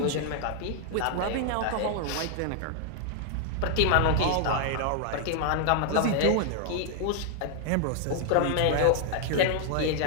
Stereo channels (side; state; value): both; different; correlation 0.00